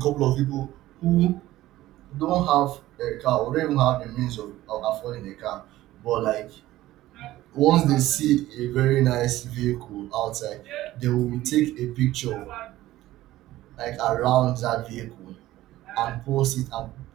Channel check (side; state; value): left; quieter; 15.7 dB